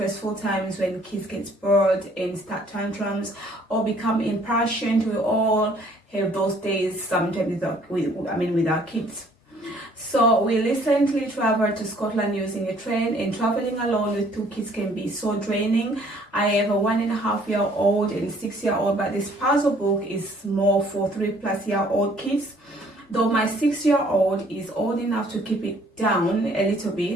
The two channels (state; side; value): normal; both; correlation 0.59